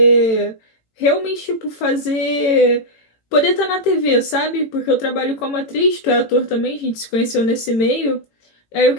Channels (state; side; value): late; right; 18 ms